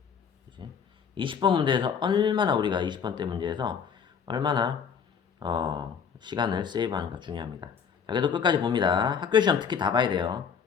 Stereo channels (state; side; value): quieter; right; 6.9 dB